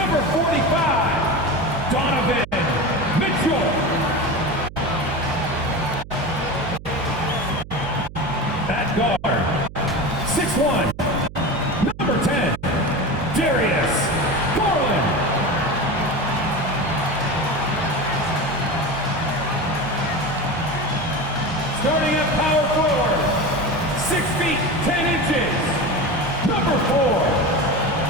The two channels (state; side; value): noise; right; hum, 15 dB below the sound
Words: 45, Donovan Mitchell. At guard, 6'1", number 10, Darius Garland. Starting at power forward, 6 feet 10 inches, number 4,